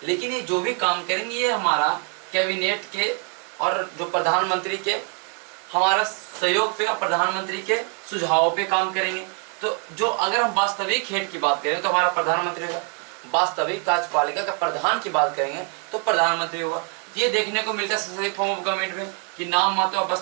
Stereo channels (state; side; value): quieter; left; 36.2 dB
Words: लेकिन ये जो भी काम करेंगे ये हमारा कैबिनेट के और जो प्रधानमंत्री के हमारा सहयोग पे, प्रधानमंत्री के सुझाव पे काम करेंगे। तो जो अगर हम वास्तविक हेड की बात करें तो हमारा प्रधानमंत्री होगा, वास्तविक कार्यपालिका का प्रधान की बात करेंगे तो प्रधानमंत्री होगा। ये देखने को मिलता है संसदीय फॉर्म ऑफ गवर्नमेंट में कि नाम मात्र